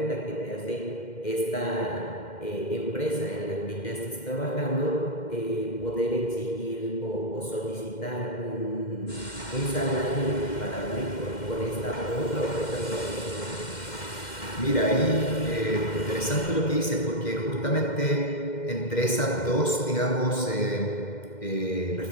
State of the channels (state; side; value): late; right; 2.1 ms